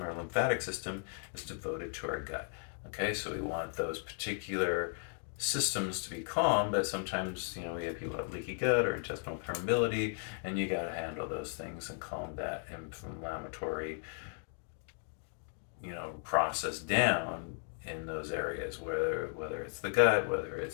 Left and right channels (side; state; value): right; silent; 54 dB below the other